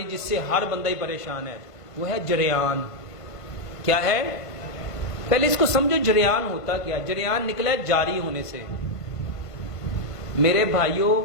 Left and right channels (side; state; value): right; late; 1.5 ms